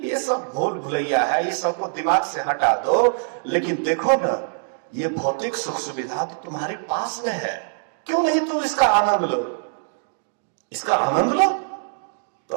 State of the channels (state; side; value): silent; left; digital silence